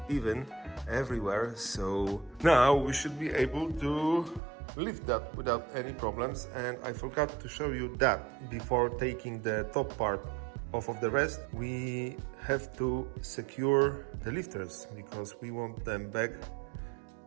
even everywhere. So now we should be able to lift that without any problems. And I forgot to show you that before taking the top part off of the rest, we have to secure the lifters because we want them back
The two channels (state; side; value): drops out; left; at 4.4 s